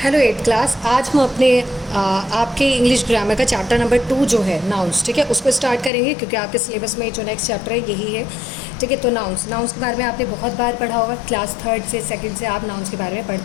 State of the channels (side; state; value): right; drops out; at 5.9 s